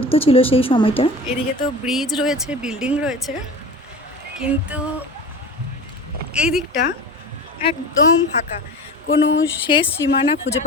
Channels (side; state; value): both; normal; correlation 0.34